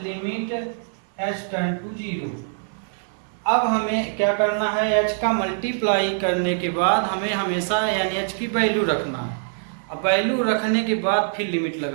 लिमिट h टेंड टू 0। अब हमें क्या करना है, h का मल्टीप्लाई करने के बाद हमें हमेशा NH की वैल्यू रखना है, अब वैल्यू रखने के बाद फिर लिमिट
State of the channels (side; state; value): left; silent; 59 dB below the other